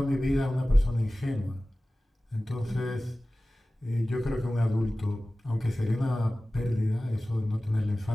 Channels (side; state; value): both; normal; correlation 0.97